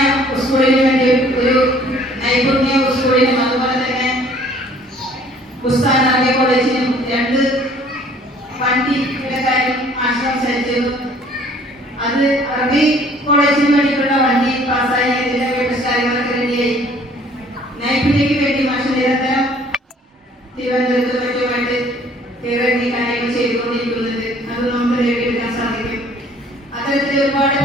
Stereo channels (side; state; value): both; normal; correlation 0.56